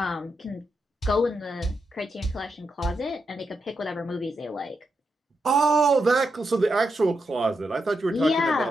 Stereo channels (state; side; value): normal; both; correlation 0.84